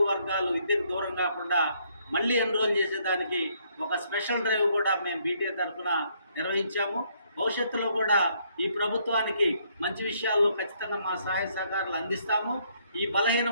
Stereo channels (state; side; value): inverted; both; correlation -0.69